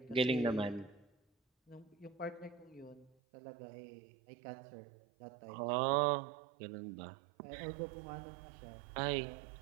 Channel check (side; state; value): left; drops out; at 3.1 s